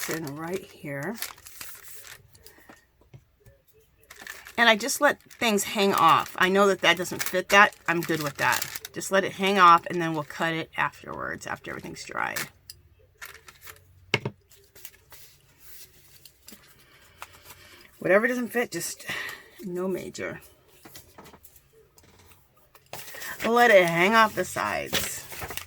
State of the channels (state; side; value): identical; both; correlation 1.00